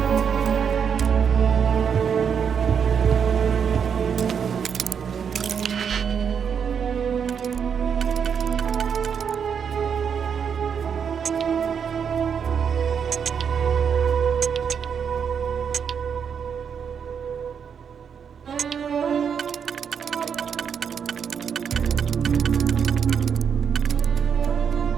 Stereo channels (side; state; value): left; quieter; 7.2 dB